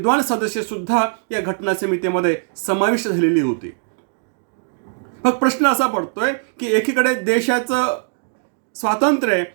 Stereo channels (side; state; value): left; silent; digital silence